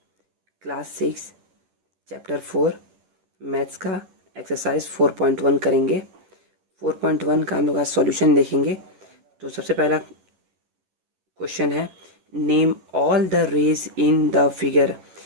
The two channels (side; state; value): left; late; 11 ms